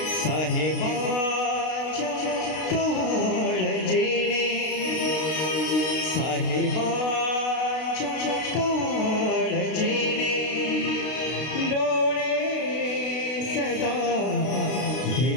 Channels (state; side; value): late; right; 32 ms